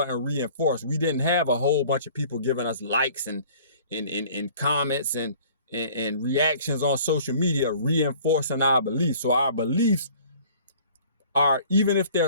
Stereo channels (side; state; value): both; inverted; correlation -0.51